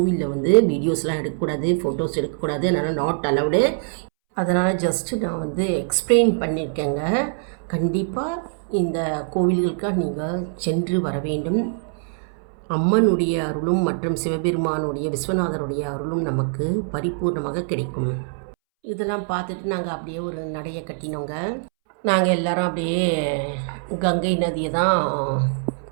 வீடியோஸ்லாம் எடுக்கக்கூடாது, ஃபோட்டோஸ் எடுக்கக்கூடாது, அதனால் நாட் அலவுடு. அதனால் ஜஸ்ட்டு நான் எக்ஸ்பிளைன் பண்ணியிருக்கேங்க. கண்டிப்பாக இந்த கோவில்களுக்காக நீங்கள் சென்று வர வேண்டும். அம்மனுடைய அருளும் மற்றும் சிவபெருமானுடைய விஸ்வநாதருடைய அருளும் நமக்கு பரிபூர்ணமாக கிடைக்கும். இதெல்லாம் பார்த்துட்டு நாங்கள் அப்படியே ஒரு நடையை கட்டினோங்க. நாங்கள் எல்லாரும் அப்படியே கங்கை நதியை தான்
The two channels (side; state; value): left; silent; 63 dB below the other